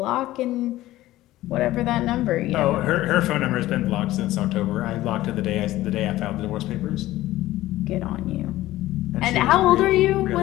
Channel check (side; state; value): right; quieter; 16.0 dB